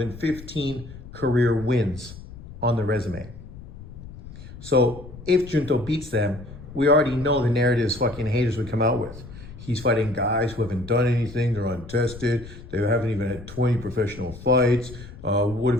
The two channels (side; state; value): left; noise; rumble, 15 dB below the sound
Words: 15 career wins on the resume. So if Junto beats them, we already know the narratives fucking haters would come out with. He's fighting guys who haven't done anything, they're untested, they haven't even had 20 professional fights. What